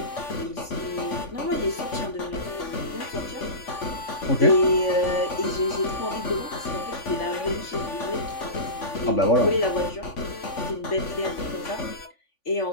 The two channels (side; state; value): right; late; 3.5 ms